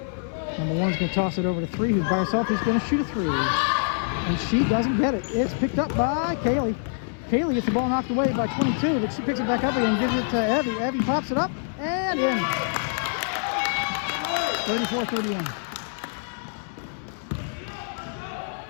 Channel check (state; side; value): silent; right; 61 dB below the other